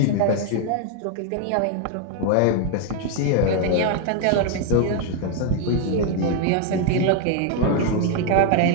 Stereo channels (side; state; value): both; different; correlation 0.00